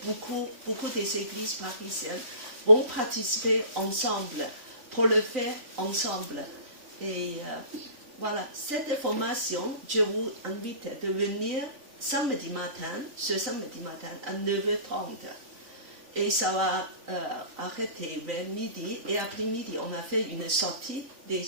beaucoup des églises parisiennes vont participer ensemble pour le faire ensemble. Et voilà, cette formation, je vous invite de venir samedi matin, ce samedi matin à 9h30. Et ça va arrêter vers midi. Et après-midi, on a fait une sortie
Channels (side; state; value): left; late; 3.5 ms